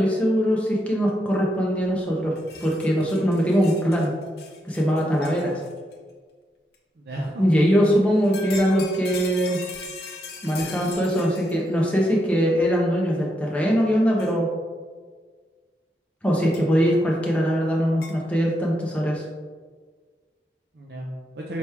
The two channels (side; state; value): both; normal; correlation 0.81